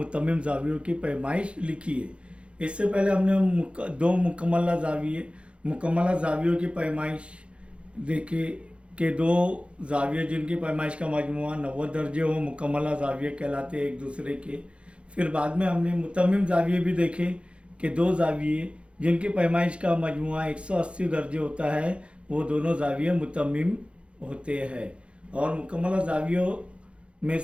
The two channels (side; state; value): left; late; 0.059 ms